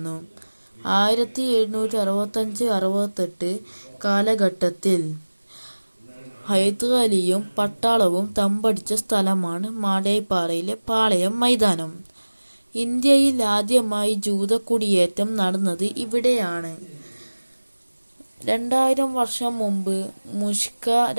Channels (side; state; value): both; inverted; correlation -1.00